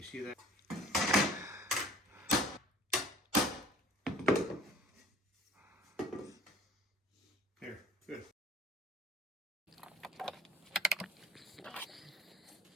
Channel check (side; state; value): both; normal; correlation 0.50